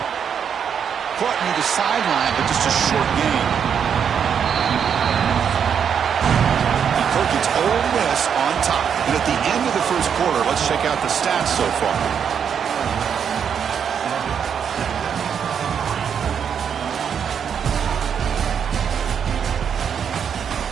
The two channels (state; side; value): quieter; left; 7.6 dB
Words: Caught near the sideline, but just a short gain. It's Ole Miss on top. And at the end of the first quarter, let's check out the stats so far.